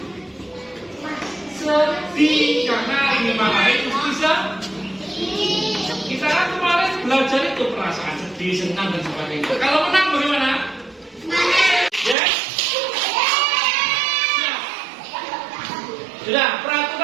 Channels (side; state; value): left; drops out; at 12.2 s